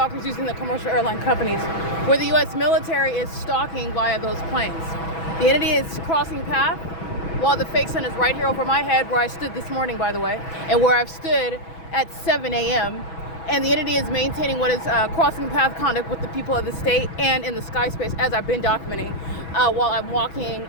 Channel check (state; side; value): late; right; 6.1 ms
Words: using the commercial airline companies, where the U.S. military is stalking via those planes. The entity is crossing path while the fake sun is right here over my head, where I stood this morning, by the way, and where I've stood at 7 a.m. And the entity is maintaining what is crossing path conduct with the people of the state and in the sky space, as I've been documenting, while I'm walking